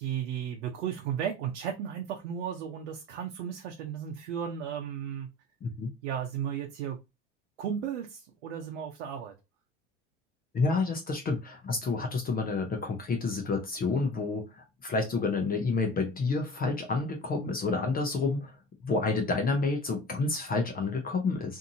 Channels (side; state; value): both; normal; correlation 0.41